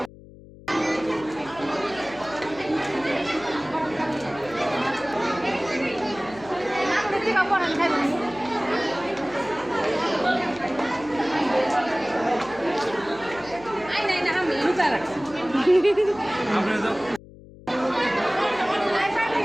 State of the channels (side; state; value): left; noise; hum, 19 dB below the sound